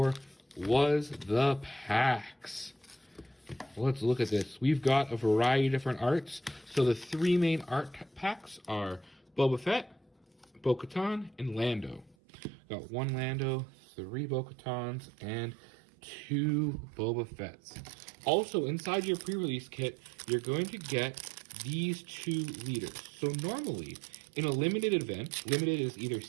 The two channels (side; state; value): left; drops out; at 12.2 s